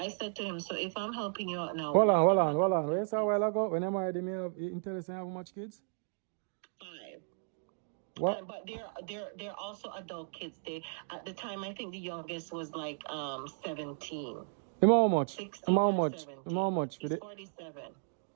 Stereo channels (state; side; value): silent; left; digital silence